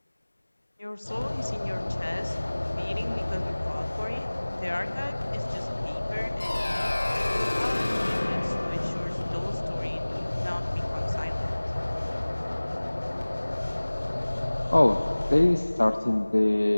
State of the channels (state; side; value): inverted; both; correlation -1.00